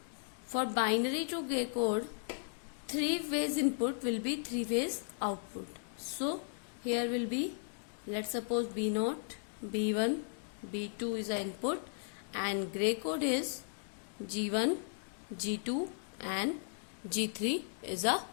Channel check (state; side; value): silent; right; digital silence